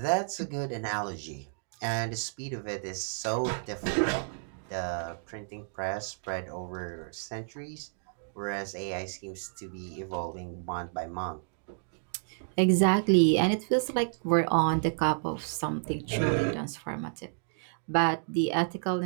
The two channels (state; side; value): silent; left; digital silence